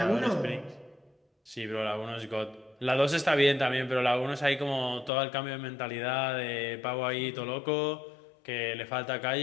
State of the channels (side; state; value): right; drops out; at 5.1 s